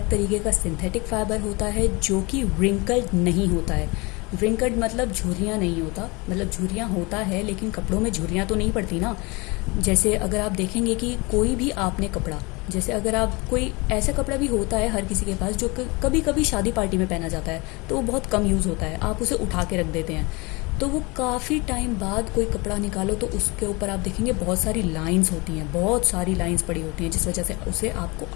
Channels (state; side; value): quieter; right; 26.3 dB